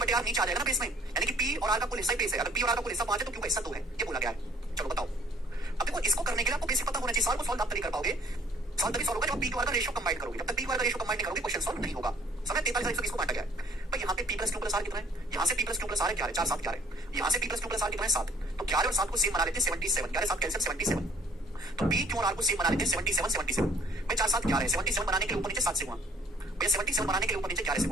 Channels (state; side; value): normal; both; correlation 0.58